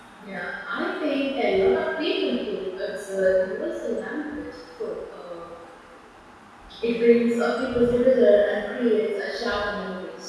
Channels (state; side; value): identical; both; correlation 1.00